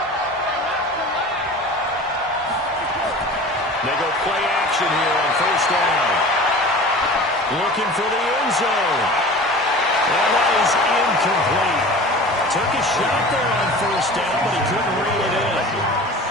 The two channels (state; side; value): normal; both; correlation 0.39